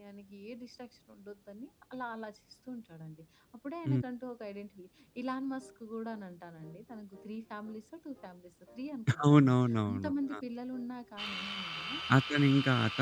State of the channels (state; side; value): identical; both; correlation 1.00